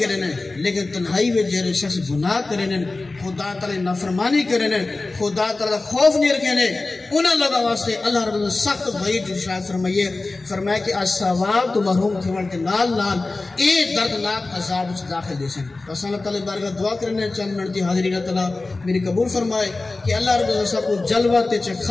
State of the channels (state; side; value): quieter; right; 3.3 dB